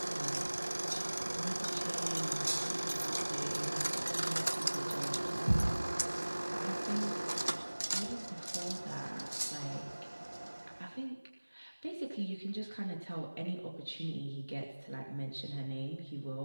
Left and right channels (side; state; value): both; inverted; correlation -1.00